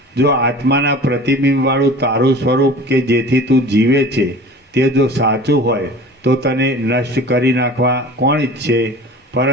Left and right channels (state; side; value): normal; both; correlation 0.40